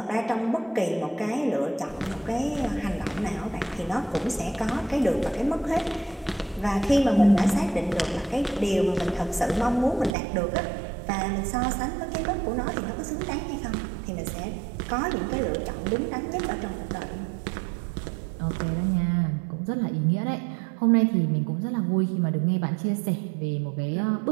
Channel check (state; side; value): drops out; left; at 10.2 s